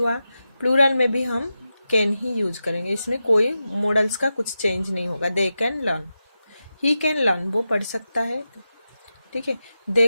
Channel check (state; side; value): inverted; both; correlation -0.91